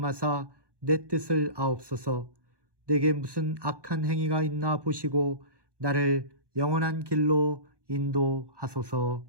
내 뜻을 아옵소서. 내게 무슨 악한 행위가 있나 보시고 나를 영원한 길로 인도하소서.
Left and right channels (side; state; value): left; late; 1.1 ms